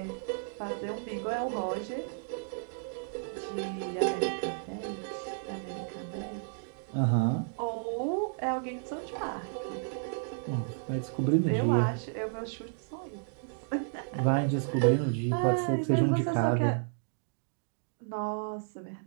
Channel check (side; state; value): left; silent; digital silence